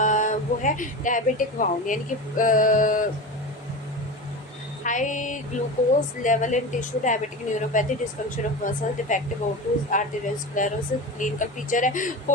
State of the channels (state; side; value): normal; both; correlation 0.27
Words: वो है डायबिटिक वाउंड, यानी कि high glucose level in tissue, diabetic neuropathy, dysfunction of muscle, defective O2, arteriosclerosis। clinical feature है